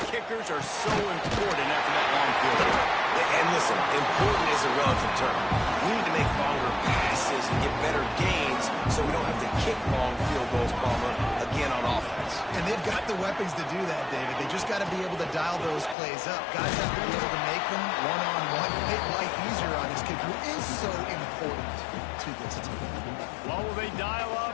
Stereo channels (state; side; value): drops out; right; at 16.0 s